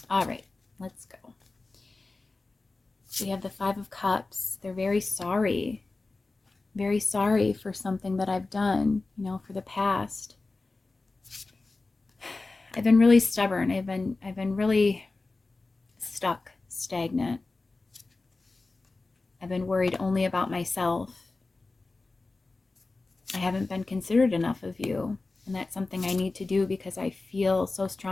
All right, let's go. We have the 5 of Cups. They're very sorry for something that I've done, for the past. I've been really stubborn. I've been really stuck, stagnant. I've been worried only about myself. I haven't been considerate enough of you, and that's something I need to do because I feel so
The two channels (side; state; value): right; quieter; 3.5 dB